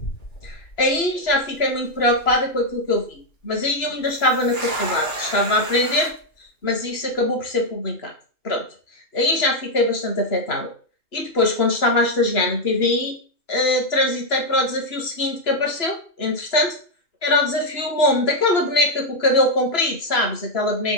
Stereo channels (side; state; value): right; late; 2.9 ms